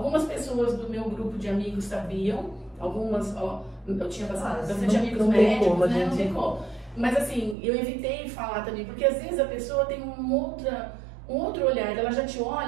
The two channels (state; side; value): drops out; left; at 7.6 s